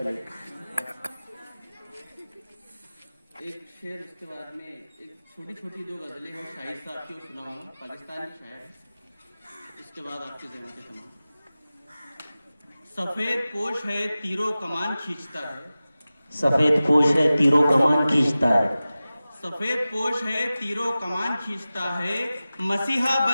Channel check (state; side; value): inverted; both; correlation -0.96